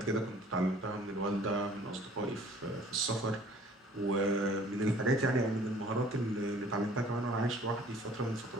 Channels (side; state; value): both; normal; correlation 0.52